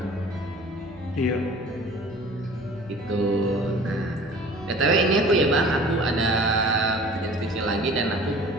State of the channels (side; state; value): right; noise; hum, 25 dB below the sound